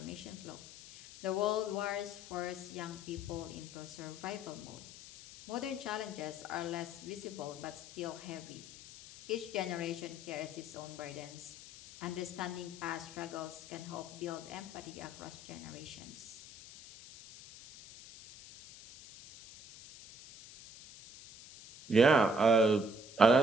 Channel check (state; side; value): noise; left; hiss, 16 dB below the sound